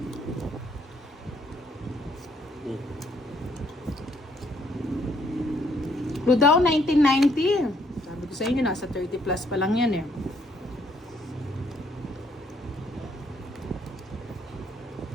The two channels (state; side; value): normal; both; correlation 0.68